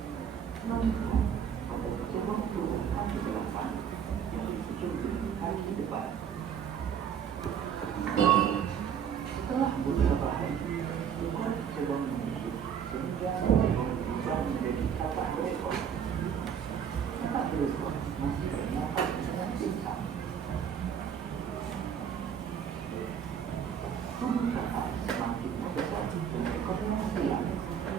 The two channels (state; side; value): quieter; left; 8.0 dB